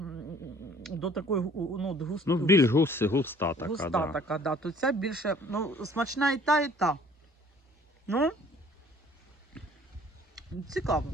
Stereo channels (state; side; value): normal; both; correlation 0.54